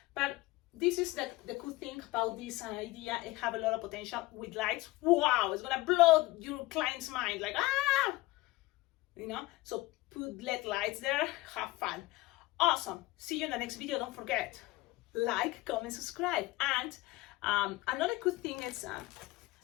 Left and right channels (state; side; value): quieter; right; 20.0 dB